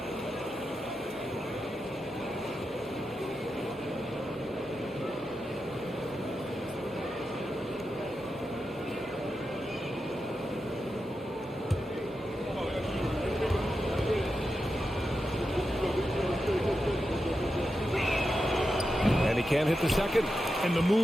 And he can't hit the second. And the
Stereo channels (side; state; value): both; normal; correlation 0.89